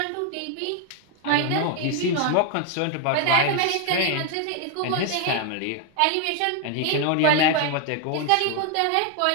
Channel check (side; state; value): both; different; correlation 0.01